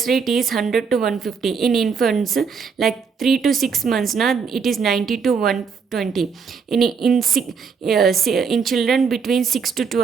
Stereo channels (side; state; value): left; quieter; 5.8 dB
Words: rate is 100 to 150. In infants, like 3 to 6 months, na, it is 90 to 120. In children between 6 to